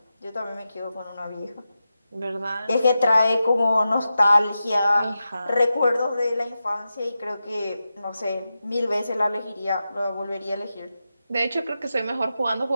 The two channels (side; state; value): both; inverted; correlation -0.91